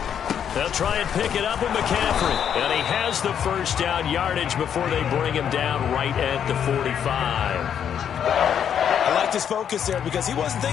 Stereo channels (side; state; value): right; quieter; 8.6 dB